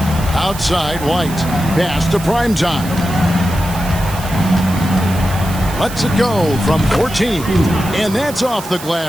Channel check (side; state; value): right; noise; hiss, 13 dB below the sound